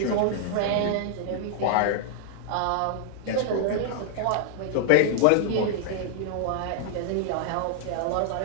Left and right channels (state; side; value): different; both; correlation -0.01